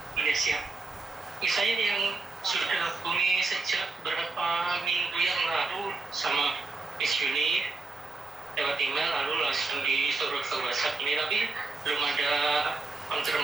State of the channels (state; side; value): quieter; left; 3.6 dB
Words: Iya siap. Saya yang sudah hubungi sejak beberapa minggu yang lalu sama Miss Juni lewat email, lalu langsung disuruh ke WhatsApp ini, tapi belum ada